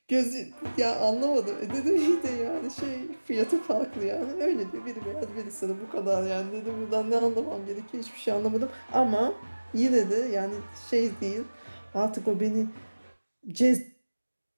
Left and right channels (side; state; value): both; inverted; correlation -1.00